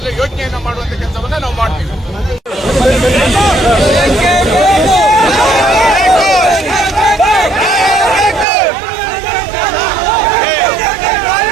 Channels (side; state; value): left; drops out; at 8.5 s